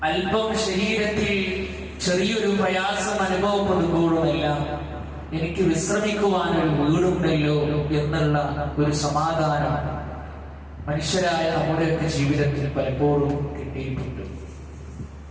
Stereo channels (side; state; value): both; identical; correlation 1.00